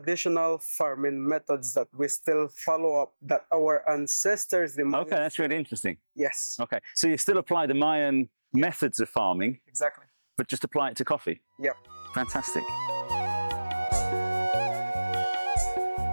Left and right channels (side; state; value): both; inverted; correlation -1.00